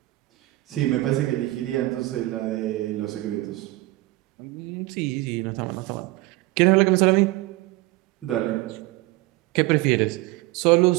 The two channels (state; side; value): quieter; left; 19.4 dB